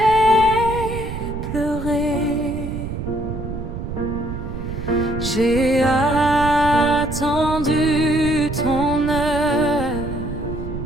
pleuré, j'ai attendu ton heure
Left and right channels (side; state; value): right; noise; rumble, 6 dB below the sound